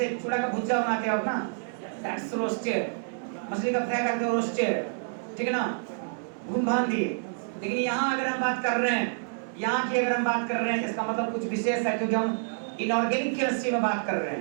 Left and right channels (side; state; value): left; silent; digital silence